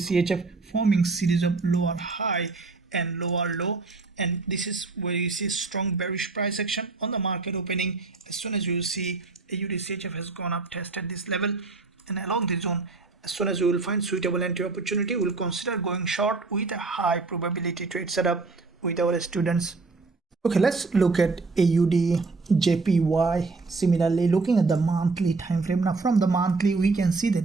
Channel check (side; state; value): left; quieter; 3.9 dB